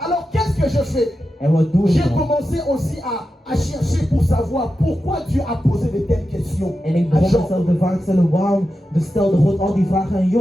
qu'est-ce que je fais? En wat doe J'ai ik dan? commencé aussi à chercher pour savoir pourquoi Dieu a posé de telles questions En ik à begon Job. mezelf de vraag te stellen, waarom stelde God al die vragen aan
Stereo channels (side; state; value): both; normal; correlation 0.90